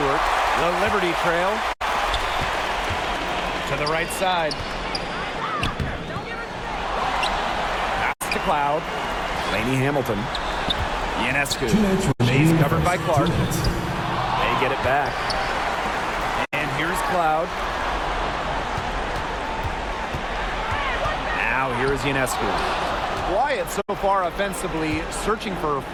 The Liberty trail. To the right side. Pass to Cloud. Lainey Hamilton. Ionescu. She's covered by Clark. They get it back. And here's Cloud. Now here's Ionescu. Quiet so far offensively, searching for her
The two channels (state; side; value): identical; both; correlation 1.00